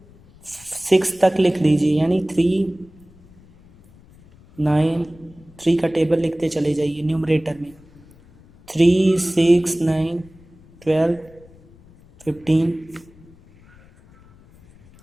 6 तक लिख लीजिए, यानी 3 9, 3 का टेबल लिखते चले जाइए न्यूमरेटर में। 3 6 9 12 15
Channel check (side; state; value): left; noise; rumble, 26 dB below the sound